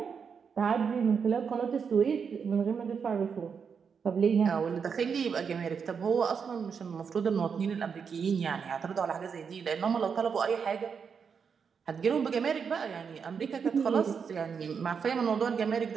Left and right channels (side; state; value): left; quieter; 6.3 dB